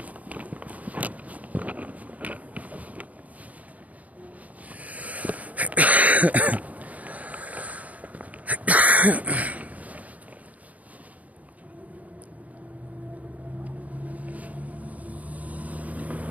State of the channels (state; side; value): late; left; 0.072 ms